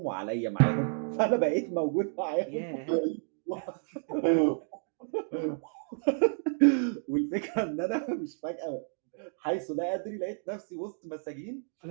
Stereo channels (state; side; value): silent; left; digital silence